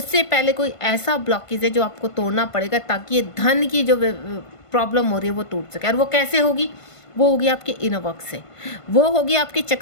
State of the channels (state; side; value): late; right; 1.5 ms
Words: पहले कोई ऐसा ब्लॉकेज है जो आपको तोड़ना पड़ेगा ताकि ये धन की जो प्रॉब्लम हो रही है वो टूट सके। और वो कैसे होगी, वो होगी आपके इनर वर्क से, वो होगी आपके